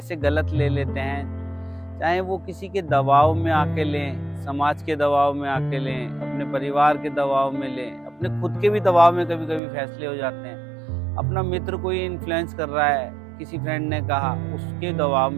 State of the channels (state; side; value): drops out; left; at 9.6 s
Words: गलत ले लेते हैं, चाहे वो किसी के दबाव में आके लें, समाज के दबाव में आके लें, अपने परिवार के दबाव में लें, अपने खुद के भी दबाव में कभी कभी फैसले हो जाते हैं। अपना मित्र कोई इन्फ्लुएंस कर रहा है, किसी फ्रेंड ने कहा, उसके दबाव